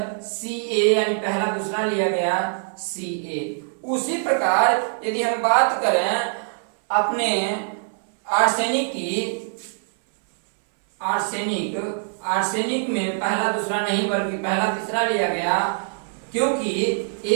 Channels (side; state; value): left; silent; 63 dB below the other